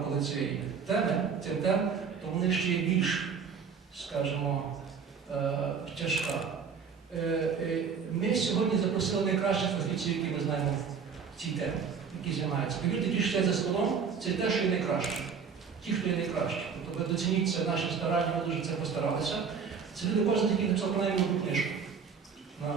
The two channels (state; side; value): quieter; left; 6.2 dB